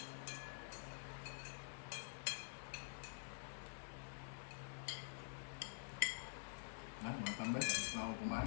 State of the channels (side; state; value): right; silent; digital silence